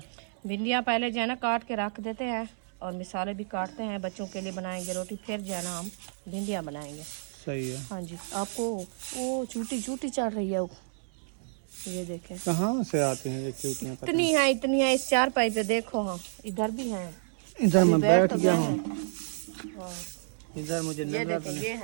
भिंडियाँ पहले जो है ना काट के रख देते हैं और मिसाले भी काटते हैं, बच्चों के लिए बनाएंगे रोटी, फिर जो है ना हम भिंडियाँ बनाएंगे। सही है। हाँ जी, आपको वो चूटी चूटी चढ़ रही है वो, ये देखें कहाँ से आते हैं ये चूटियाँ? इतनी है इस चारपाई पे, देखो। हाँ इधर भी है, इधर मैं बैठ तो गया गए हूँ, हैं। हाँ, इधर मुझे ये नजर देखें, ये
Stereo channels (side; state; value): left; silent; 58 dB below the other